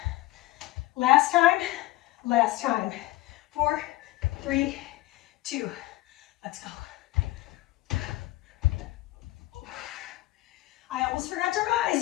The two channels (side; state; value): right; quieter; 17.9 dB